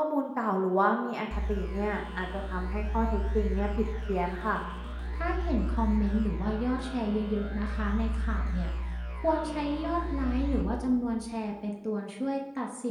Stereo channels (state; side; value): identical; both; correlation 1.00